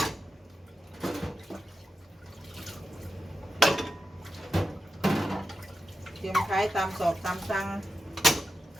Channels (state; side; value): normal; both; correlation 0.89